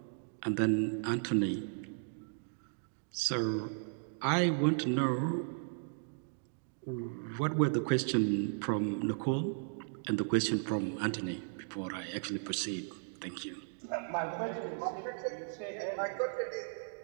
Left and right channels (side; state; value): left; silent; digital silence